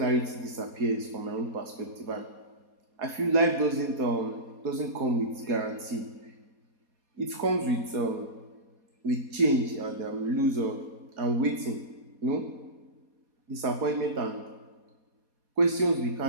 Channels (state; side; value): late; left; 4.2 ms